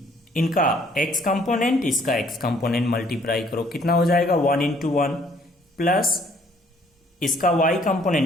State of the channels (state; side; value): normal; both; correlation 0.62